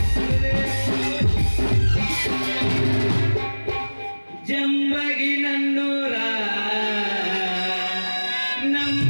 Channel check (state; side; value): inverted; both; correlation -1.00